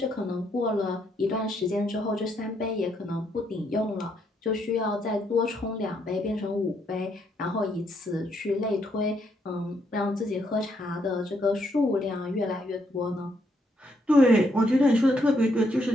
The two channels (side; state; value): both; normal; correlation 0.75